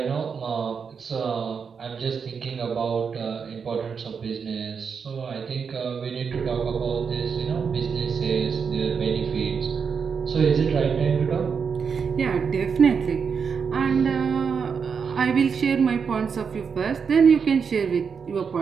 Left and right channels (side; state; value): left; quieter; 6.1 dB